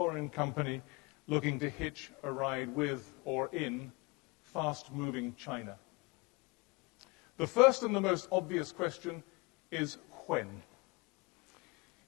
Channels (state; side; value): quieter; right; 26.6 dB